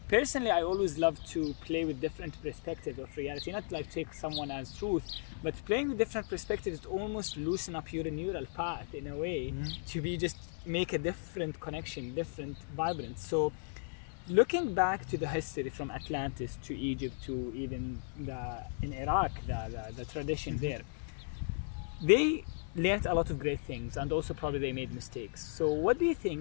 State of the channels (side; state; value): right; silent; 54 dB below the other